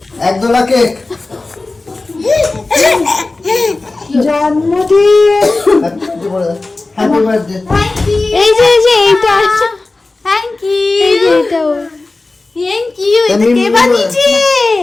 এক দোলা কেক। জন্মদিন। Happy birthday. এই যে এইটা আছে, থ্যাংক ইউ এই যে এটাও থ্যাংক ইউ। এটা কে বানিয়েছে?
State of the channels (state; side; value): quieter; right; 3.3 dB